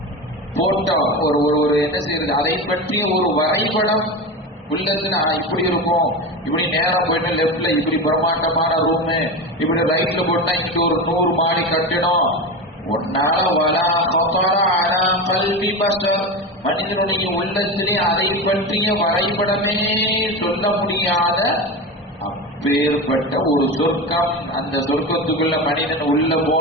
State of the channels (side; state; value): both; normal; correlation 0.23